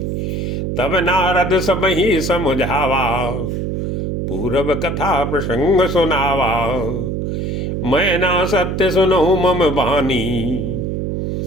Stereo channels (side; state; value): right; noise; hum, 2 dB below the sound